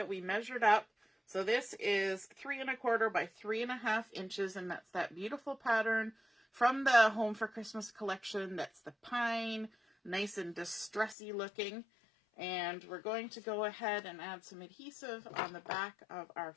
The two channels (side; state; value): right; drops out; at 11.2 s